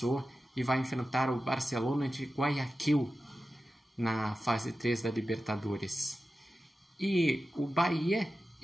e vai enfrentar o Barcelona de Guayaquil na fase 3 da Libertadores. E o Bahia,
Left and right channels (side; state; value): both; normal; correlation 0.93